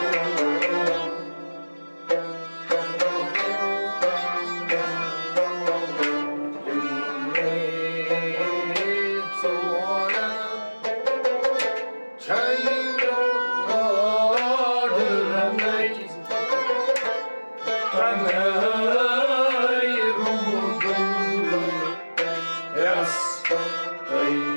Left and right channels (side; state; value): both; inverted; correlation -1.00